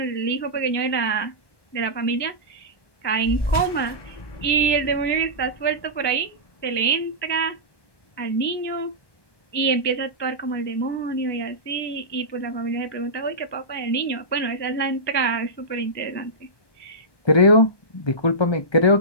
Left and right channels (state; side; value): late; right; 1.2 ms